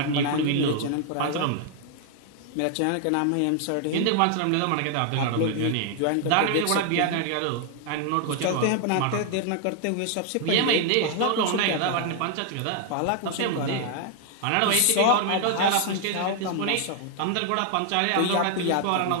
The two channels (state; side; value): different; both; correlation 0.00